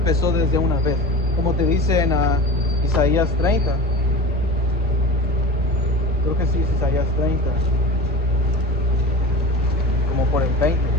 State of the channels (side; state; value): both; normal; correlation 0.33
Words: desde una vez, como te dice en Isaías 30. Creo que sí es Isaías 30, como por el 20.